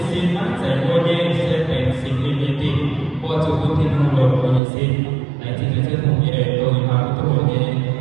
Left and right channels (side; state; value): left; drops out; at 4.6 s